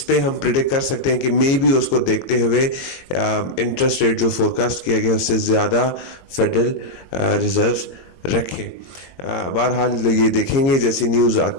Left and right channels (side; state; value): right; late; 22 ms